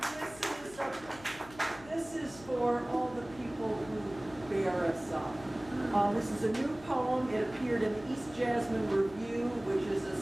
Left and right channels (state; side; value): noise; left; hum, 19 dB below the sound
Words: this is for all the people who bear us up. This is a new poem. It appeared in the East Jasmine Review, which is a